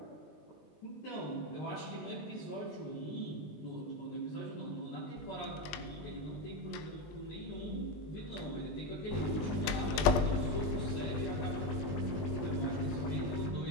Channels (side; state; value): right; late; 20 ms